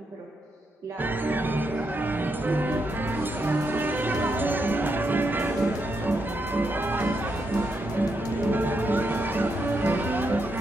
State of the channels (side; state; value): both; normal; correlation 0.81